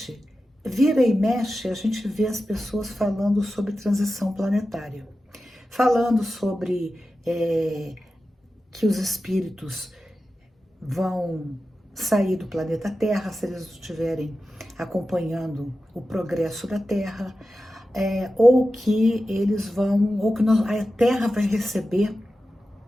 vira e mexe, a gente vê as pessoas falando sobre transição planetária, falando sobre que os espíritos vão sair do planeta Terra se eles estiverem acompanhando o progresso da Terra, ou que eles vão, ou que a Terra vai receber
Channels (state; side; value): normal; both; correlation 0.93